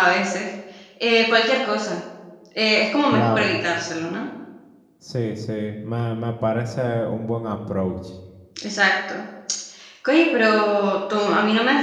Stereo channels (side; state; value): both; identical; correlation 1.00